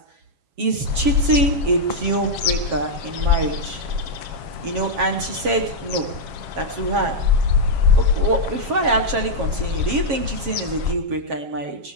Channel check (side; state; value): left; late; 7.3 ms